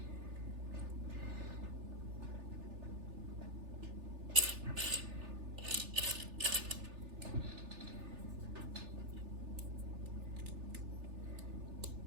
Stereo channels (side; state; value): left; late; 3.4 ms